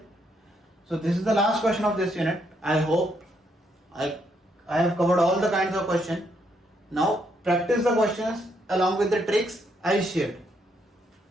So this is the last question of this unit. I hope I have covered all the kinds of questions. Now practice the questions along with the tricks I shared.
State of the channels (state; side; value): normal; both; correlation 0.75